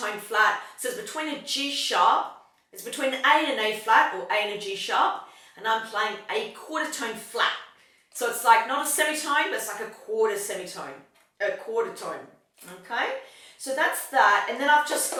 flat, so it's between a G sharp, it's between an A and an A flat, or A and a G sharp, and I'm playing a quarter tone flat. So it's like not a semitone, but it's like a quarter semitone, a quarter tone, okay? So that's that, and then I've just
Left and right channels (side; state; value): both; identical; correlation 1.00